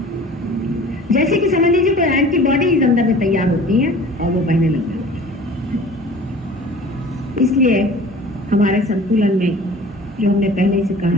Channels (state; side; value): normal; both; correlation 0.44